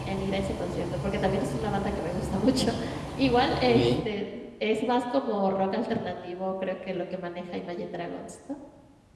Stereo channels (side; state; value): both; identical; correlation 1.00